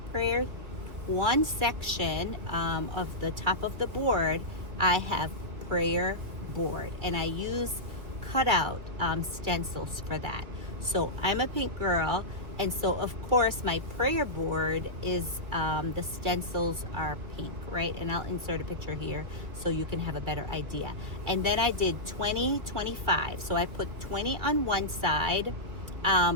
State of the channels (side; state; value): left; late; 2.6 ms